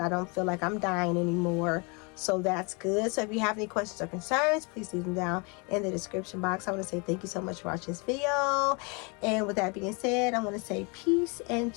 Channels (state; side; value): quieter; right; 31.6 dB